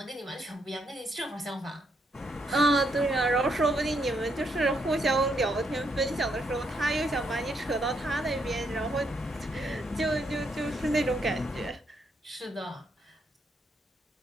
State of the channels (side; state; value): both; normal; correlation 0.76